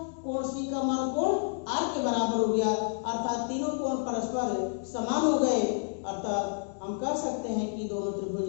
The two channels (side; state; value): right; silent; digital silence